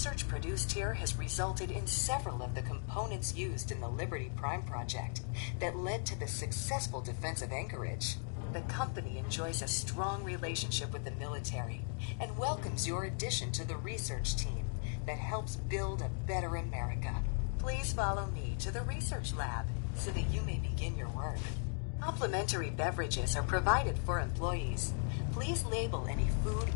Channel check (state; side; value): silent; right; 53 dB below the other